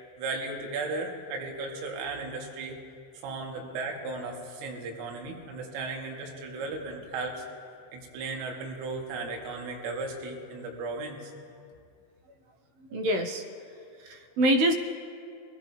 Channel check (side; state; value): left; late; 16 ms